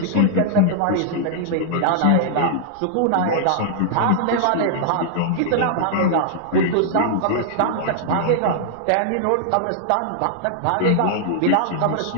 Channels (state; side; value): different; both; correlation -0.01